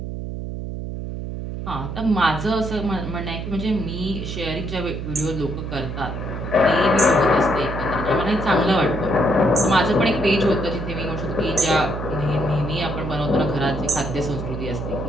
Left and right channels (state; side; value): noise; right; hum, 6 dB below the sound